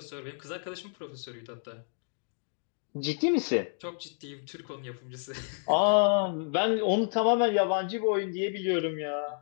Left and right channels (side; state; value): right; silent; digital silence